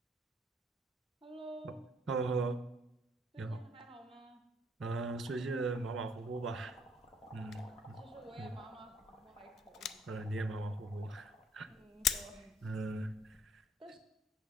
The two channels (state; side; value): normal; both; correlation 0.63